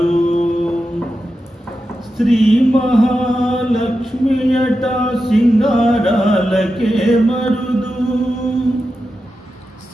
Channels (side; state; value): both; normal; correlation 0.90